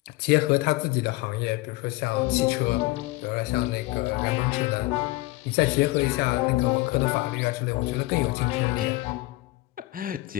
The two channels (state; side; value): quieter; right; 20.1 dB